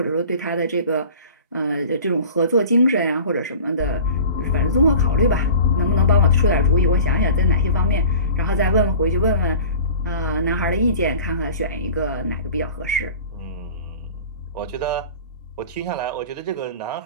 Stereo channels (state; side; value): inverted; both; correlation -0.41